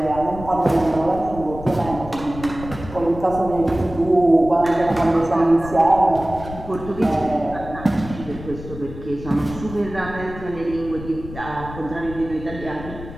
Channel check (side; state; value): left; noise; rumble, 12 dB below the sound